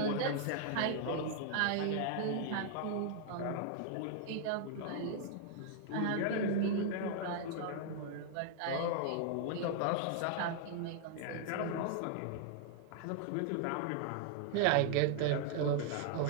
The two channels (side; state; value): both; different; correlation 0.00